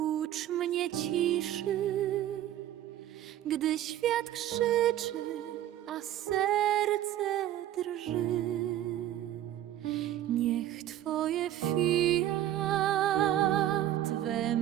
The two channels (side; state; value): left; quieter; 12.4 dB